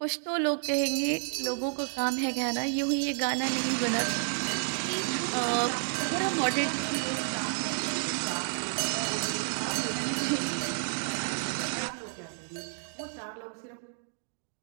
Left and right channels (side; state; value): left; silent; 57 dB below the other